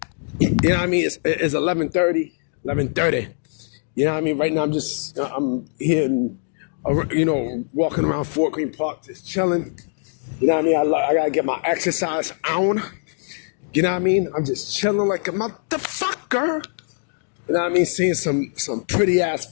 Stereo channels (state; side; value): silent; right; digital silence